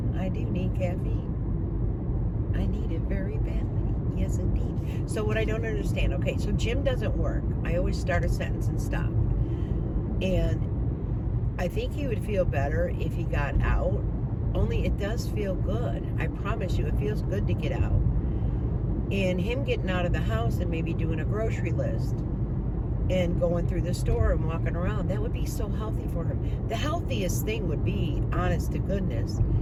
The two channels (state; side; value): identical; both; correlation 1.00